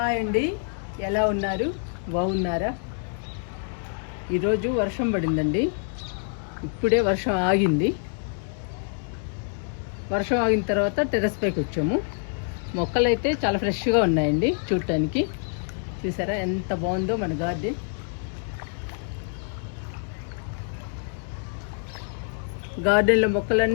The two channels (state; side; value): silent; right; 61 dB below the other